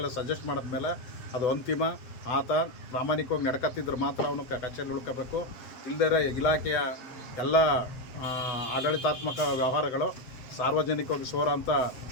ಸಜೆಸ್ಟ್ ಮಾಡಿದ್ಮೇಲೆ ಅದು ಅಂತಿಮ. ಆತ ಪ್ರಾಮಾಣಿಕವಾಗಿ ನಡ್ಕತ್ತಿದ್ರೆ ಮಾತ್ರ ಅವನು ಕಚೇರಿ ಉಳ್ಕೋಬೇಕು. ಇಲ್ಲದೇ ಇಲಾಖೆಯ ಎಲ್ಲ ಆಡಳಿತಾತ್ಮಕ ವ್ಯವಹಾರಗಳು ಸಾರ್ವಜನಿಕವಾಗಿ ಸೋರ ಅಂತ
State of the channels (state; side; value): late; right; 7.8 ms